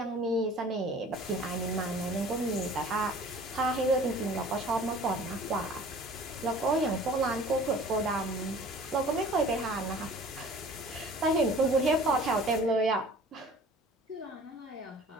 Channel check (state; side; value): normal; both; correlation 0.48